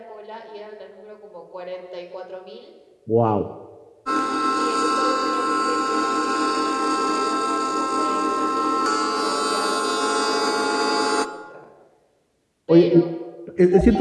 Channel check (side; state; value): both; identical; correlation 1.00